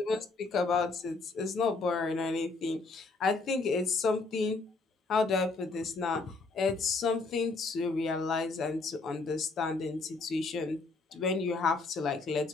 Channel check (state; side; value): quieter; right; 3.8 dB